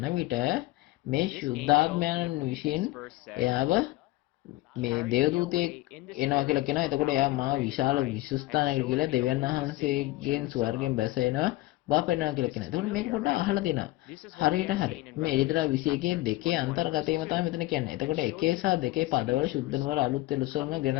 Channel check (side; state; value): right; quieter; 18.2 dB